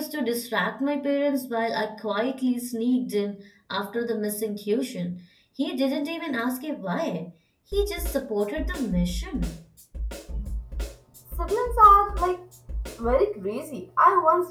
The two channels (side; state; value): both; identical; correlation 1.00